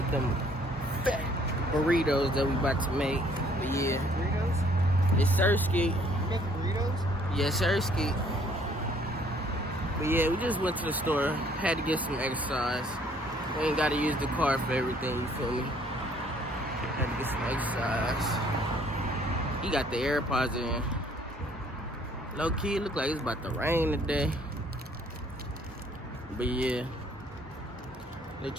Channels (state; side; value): normal; both; correlation 0.61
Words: them fat burritos that we about to make. But yeah, Burritos? it's Sirski. You making burritos? Yeah, Sirski. But yeah, we just went to the store. Had to get some exercise. We ain't gotta use the car for everything, you feel me? Had to get some exercise. He got the AirPods in. Low key, it look like it's about to rain today. But yeah.